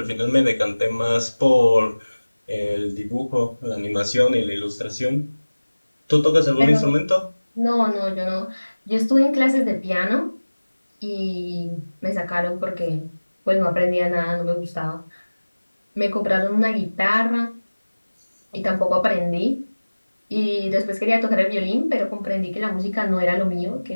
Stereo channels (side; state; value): both; inverted; correlation -1.00